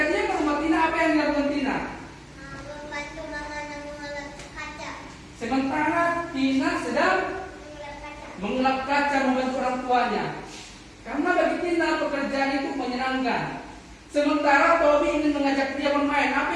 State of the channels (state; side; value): identical; both; correlation 1.00